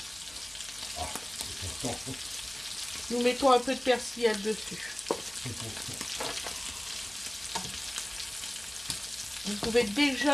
Ah, c'est important. Nous mettons un peu de persillade dessus. Vous pouvez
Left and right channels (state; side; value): noise; left; hum, 25 dB below the sound